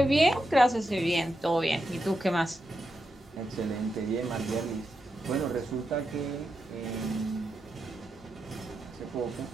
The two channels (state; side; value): normal; both; correlation 0.86